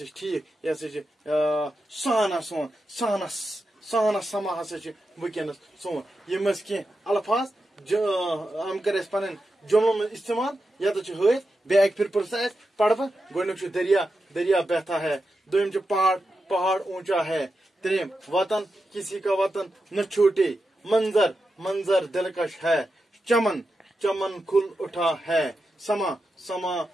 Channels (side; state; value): both; normal; correlation 0.89